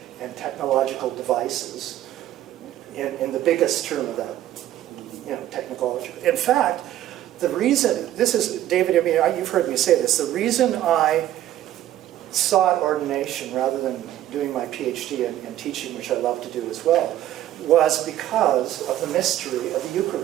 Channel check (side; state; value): left; quieter; 12.9 dB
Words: and technological devices in the biggest term of that, technology. In fact, the reason, this is, David, I mean, you've heard me say this, the reason I sought ordination rather than doing my PhD in teaching, which I love to do as well, was because of the mystery of the